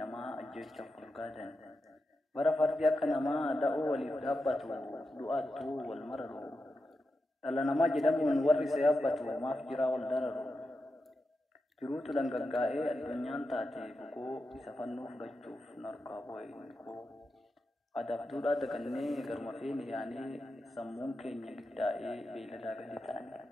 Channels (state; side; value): normal; both; correlation 0.89